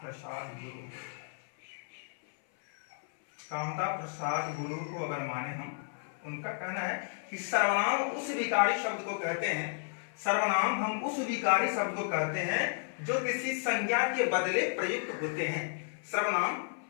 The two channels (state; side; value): silent; right; 56 dB below the other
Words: गुरु, कामता प्रसाद गुरु को अगर माने हम, उनका कहना है कि सर्वनाम उस विकारी शब्द को कहते हैं, सर्वनाम हम उस विकारी शब्द को कहते हैं जो किसी संज्ञा के बदले प्रयुक्त होते हैं। सर्वनाम